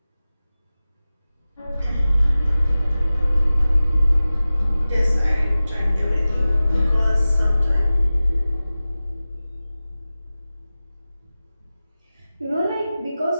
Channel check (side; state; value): both; inverted; correlation -0.96